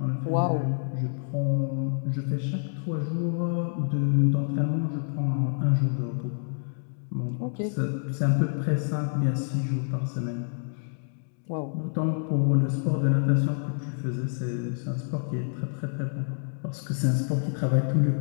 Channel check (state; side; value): silent; right; digital silence